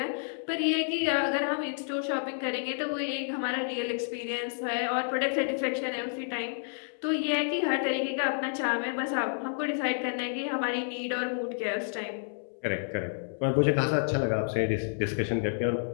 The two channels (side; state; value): right; silent; 58 dB below the other